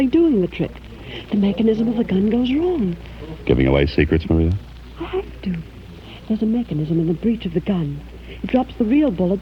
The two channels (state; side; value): identical; both; correlation 1.00